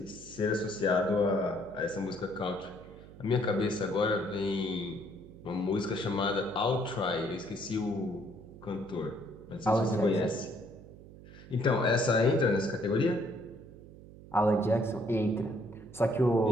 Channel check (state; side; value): noise; right; hum, 18 dB below the sound